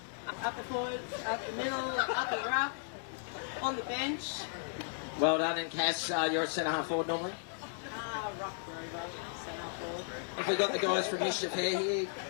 Up the forward, up the middle, up the ruck, on the bench. Well done. And Cass, you're at centre half forward normally? Ruck rover, centre forward. Have we got the guys from Mischief Hair here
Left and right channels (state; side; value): silent; right; digital silence